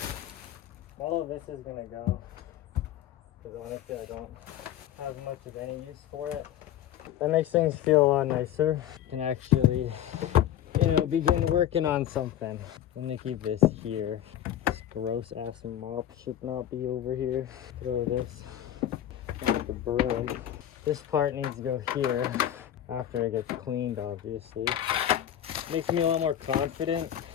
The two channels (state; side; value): quieter; right; 11.4 dB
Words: All of this is gonna go, because honestly I don't have much of any use for it. That makes things feel a lot nicer. Can actually, you know, begin working on something. I'm gonna keep this here. This gross ass mop should not be over here. Throw this on the broom. This part needs to go here after it gets cleaned, obviously. Makes me a lot more confident